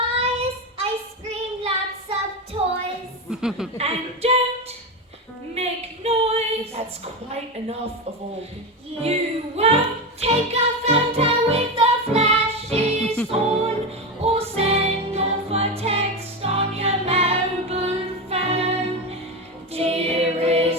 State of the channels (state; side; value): normal; both; correlation 0.16